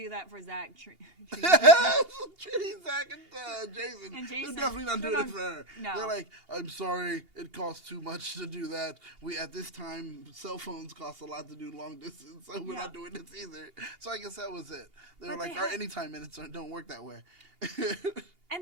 that for Zach, Trini, Zach, and Jason. And Jason. They're definitely not They're doing not- it for her. no. They're like, I'm sorry, it costs too much to do that. At this time, cell phones cost a lot to do long distance, so we're Yeah. not doing this either. So I guess that was it. They were But like, they our had- anytime minutes don't work that way.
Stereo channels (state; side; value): late; left; 2.8 ms